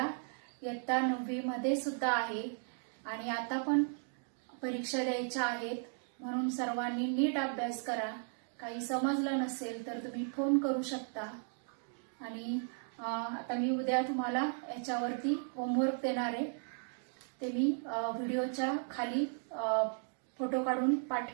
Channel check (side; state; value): left; silent; 54 dB below the other